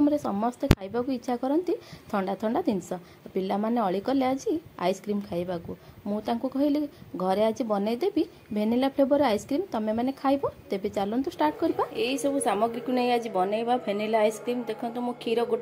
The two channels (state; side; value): identical; both; correlation 1.00